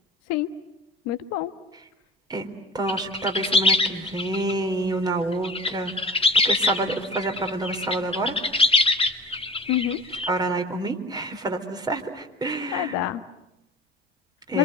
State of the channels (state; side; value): normal; both; correlation 0.38